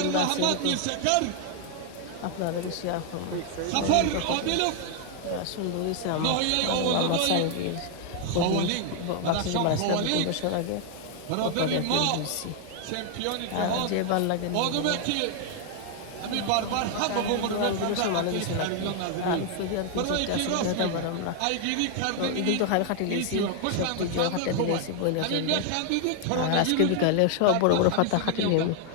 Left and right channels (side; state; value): both; different; correlation 0.00